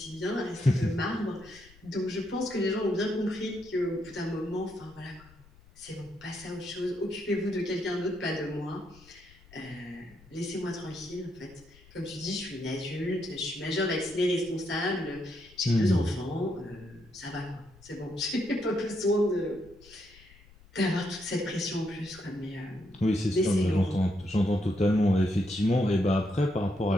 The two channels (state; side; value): noise; left; rumble, 25 dB below the sound